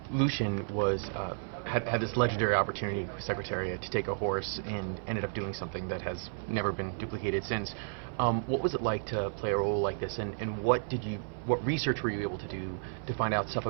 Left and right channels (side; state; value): left; silent; 56 dB below the other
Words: Lucien was had this legendary opportunity with Secretariat to take a horse and ended up doing something that has never been duplicated since. What was it like to play a role like this, and what research were you able to do to find out stuff